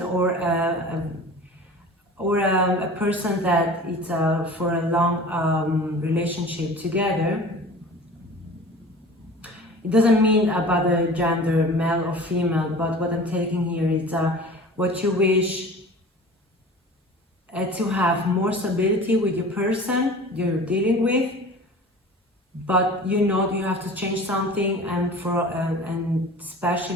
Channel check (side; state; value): both; normal; correlation 0.40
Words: or a person that it's for a long relationship together. It doesn't mean about the gender, male or female, but what I'm taking here is what you wish to have more stability with your person you're dealing with, but you know you have to change something, and and